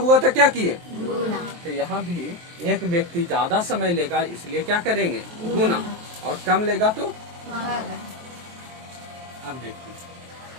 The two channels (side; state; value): left; late; 23 ms